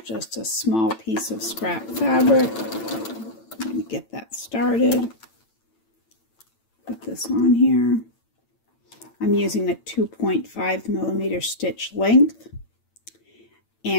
just a small piece of scrap fabric. I'm going to get that started. Put this on here. I'm using a 2.5 millimeter stitch length.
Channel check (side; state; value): right; late; 8.9 ms